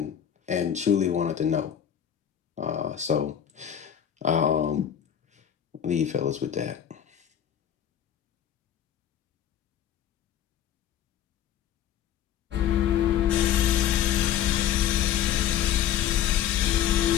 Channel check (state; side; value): quieter; right; 10.0 dB